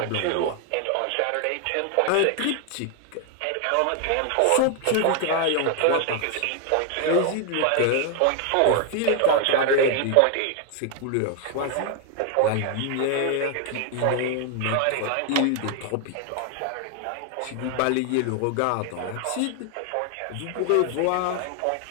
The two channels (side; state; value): both; different; correlation 0.00